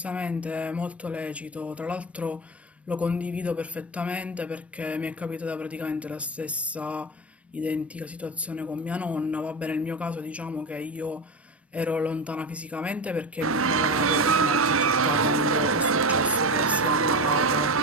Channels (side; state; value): both; normal; correlation 0.23